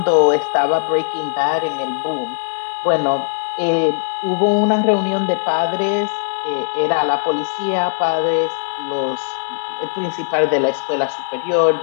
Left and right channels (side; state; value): right; silent; 62 dB below the other